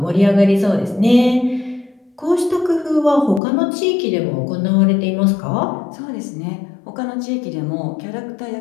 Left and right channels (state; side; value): drops out; right; at 3.4 s